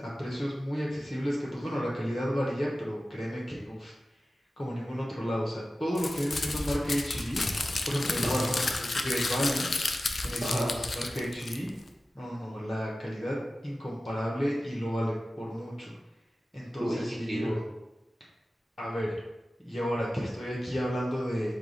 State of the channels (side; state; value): both; normal; correlation 0.95